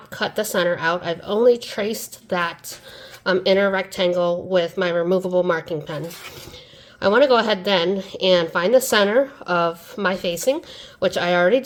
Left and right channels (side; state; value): both; identical; correlation 1.00